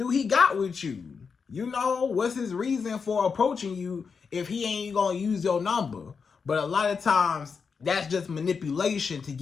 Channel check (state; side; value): quieter; right; 5.6 dB